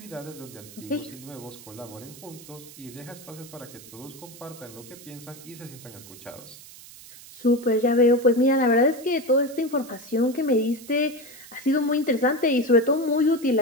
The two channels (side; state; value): right; noise; hiss, 18 dB below the sound